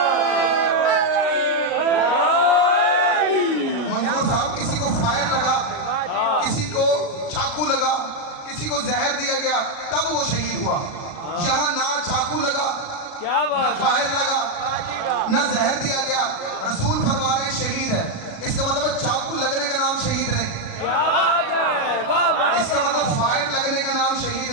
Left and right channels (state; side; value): late; right; 37 ms